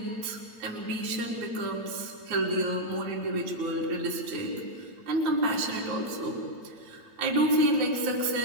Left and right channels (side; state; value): left; late; 8.9 ms